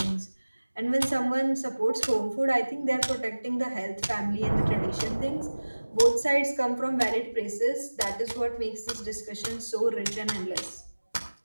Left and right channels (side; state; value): both; inverted; correlation -1.00